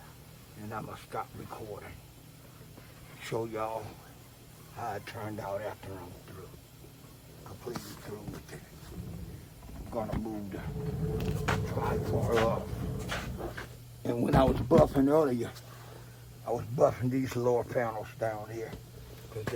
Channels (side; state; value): both; identical; correlation 1.00